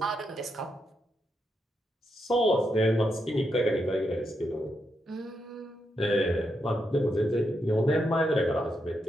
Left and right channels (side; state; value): both; normal; correlation 0.82